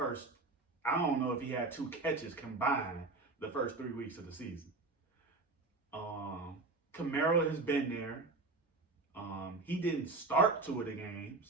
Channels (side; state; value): left; quieter; 3.5 dB